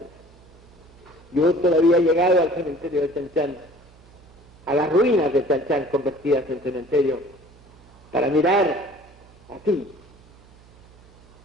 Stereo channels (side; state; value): right; noise; hum, 26 dB below the sound